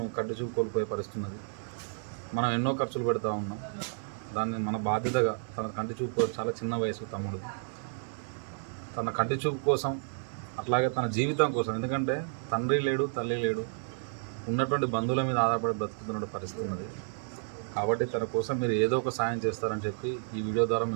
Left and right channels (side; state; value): left; silent; 57 dB below the other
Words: కంటి చూపు కోల్పోయే పరిస్థితి ఉన్నది. మనం ఎన్నో ఖర్చులు పెడతా ఉన్నాం. దాన్ని మన బాధ్యతగా తన కంటి చూపు చాలా చిన్న వయసు తమ్ముడిది. తన కంటి చూపు కోసం, అట్లాగే తన జీవితం కోసం, ఎందుకంటే తండ్రి లేడు, తల్లి లేడు, ఉన్నటువంటి బంధువుల మీద ఆధారపడి బ్రతుకుతున్న పరిస్థితి ఉన్నది. కాబట్టి తన కోసం మీరు ఏదో ఒక సాయం చేస్తారని చెప్పి ఈ వీడియో ద్వారా